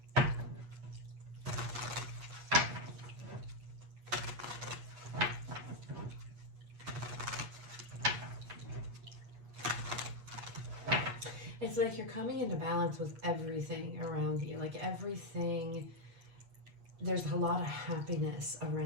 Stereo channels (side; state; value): left; late; 8.3 ms